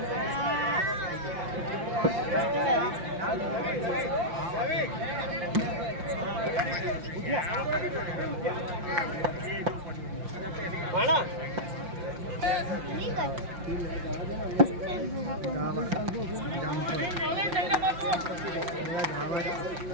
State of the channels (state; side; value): late; left; 5.7 ms